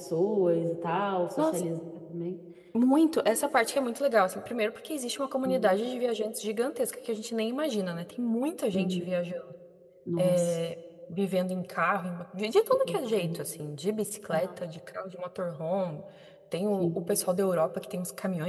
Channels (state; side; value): identical; both; correlation 1.00